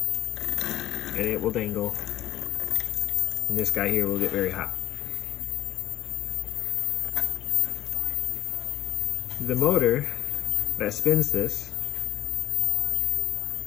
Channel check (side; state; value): right; quieter; 13.2 dB